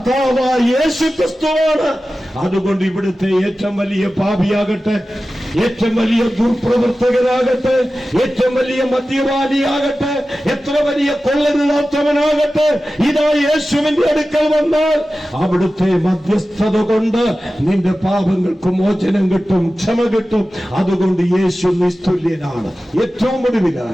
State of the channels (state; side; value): normal; both; correlation 0.95